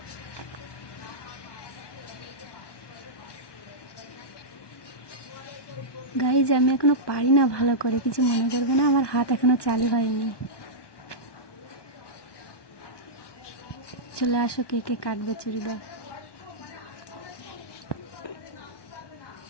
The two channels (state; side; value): late; right; 1.2 ms